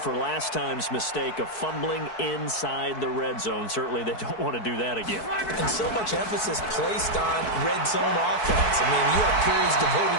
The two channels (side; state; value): right; late; 4.6 ms